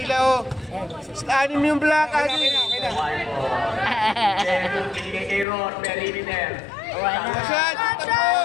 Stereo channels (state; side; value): drops out; right; at 5.5 s